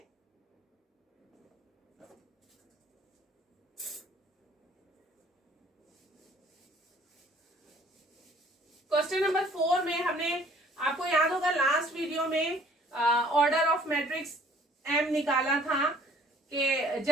क्वेश्चन नंबर 4 में हमने, आपको याद होगा लास्ट वीडियो में ऑर्डर ऑफ मैट्रिक्स एम निकाला था कि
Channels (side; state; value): both; normal; correlation 0.56